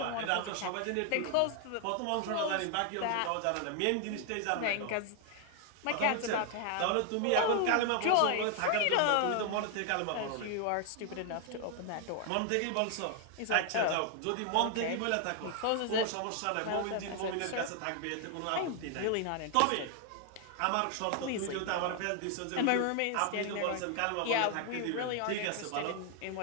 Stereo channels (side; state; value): both; different; correlation 0.00